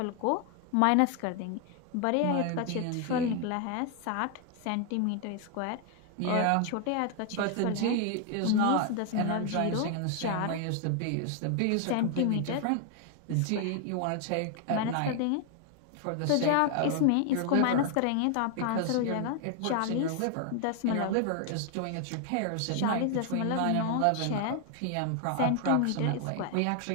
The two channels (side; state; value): both; different; correlation 0.00